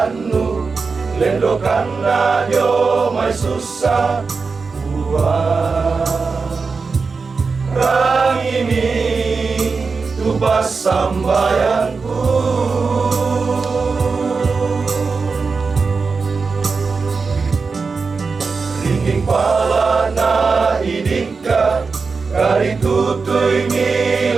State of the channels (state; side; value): quieter; left; 4.7 dB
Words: lendokan nadio mai susah Puang rang ini tubas sambayanku ringing palana idika kari tutui